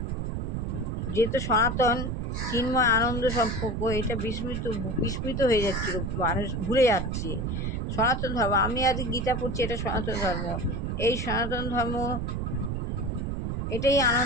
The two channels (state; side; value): noise; right; rumble, 2 dB below the sound